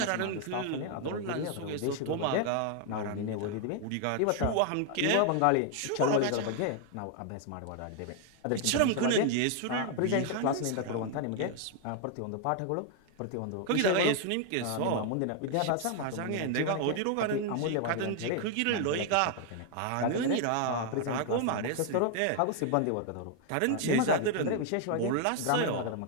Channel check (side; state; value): both; different; correlation 0.00